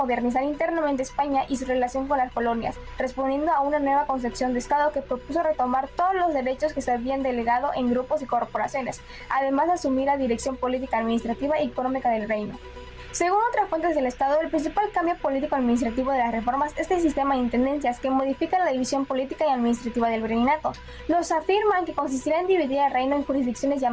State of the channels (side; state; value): both; identical; correlation 1.00